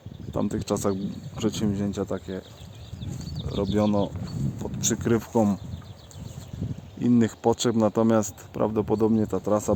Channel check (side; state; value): both; identical; correlation 1.00